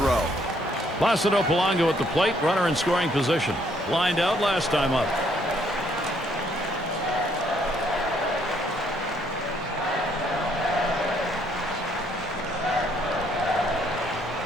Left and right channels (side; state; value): both; normal; correlation 0.68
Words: Placido Polanco at the plate, runner in scoring position. Lined out last time up.